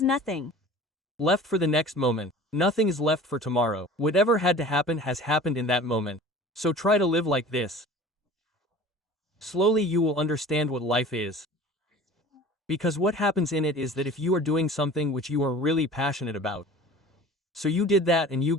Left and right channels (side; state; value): both; normal; correlation 0.42